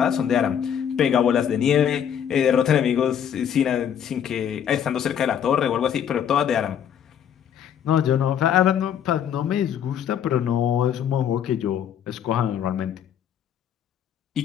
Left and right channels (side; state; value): right; quieter; 9.0 dB